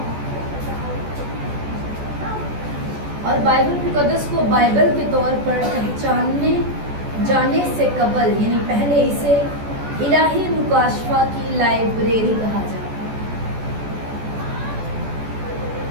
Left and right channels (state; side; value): late; left; 14 ms